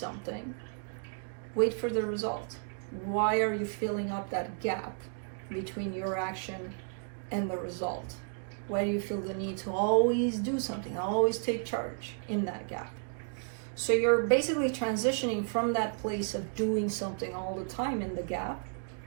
Wait for the result. Why are you filling up that gap between your action and the result? Why do you feel the need to always do something, always take charge in that gap? So you're basically transitioning from that place of doing something all the time in the gap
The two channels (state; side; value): silent; left; 56 dB below the other